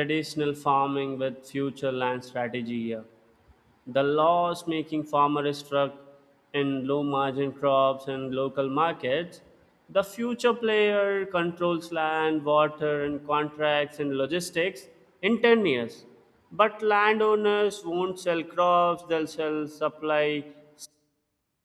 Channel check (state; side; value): identical; both; correlation 1.00